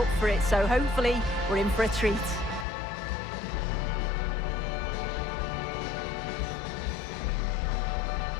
for it, so hopefully we're in for a treat.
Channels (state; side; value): drops out; right; at 2.7 s